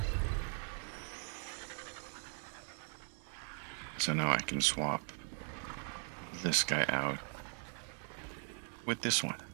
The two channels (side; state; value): left; silent; 51 dB below the other